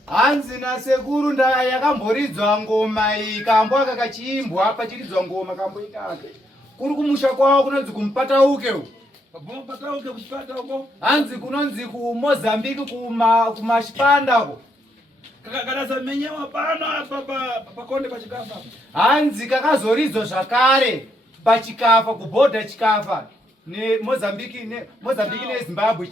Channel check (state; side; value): normal; both; correlation 0.76